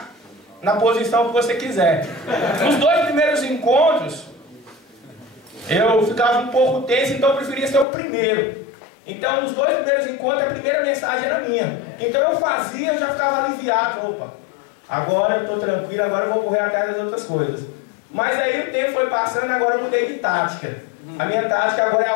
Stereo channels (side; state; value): right; drops out; at 7.9 s